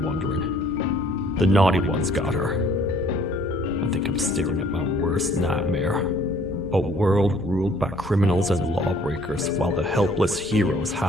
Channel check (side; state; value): both; normal; correlation 0.58